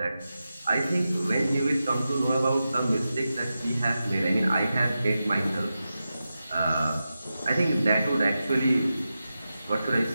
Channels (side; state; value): both; inverted; correlation -0.91